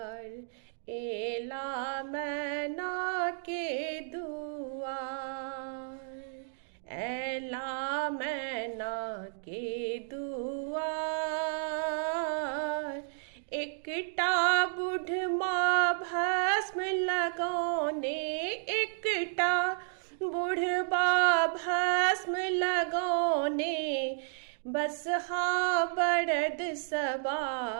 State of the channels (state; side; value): silent; left; digital silence